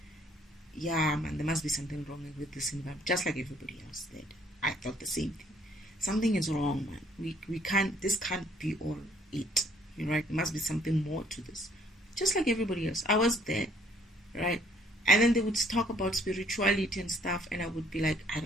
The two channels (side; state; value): both; normal; correlation 0.62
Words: yeah, man, there must be something wrong with this environment, just like everybody else did. I thought the same thing. Something is wrong, man. This can't be all it, right? There must be something more to this. Just like everybody else. I was there, right? And then they would talk about spirituality and stuff, and I would be like, I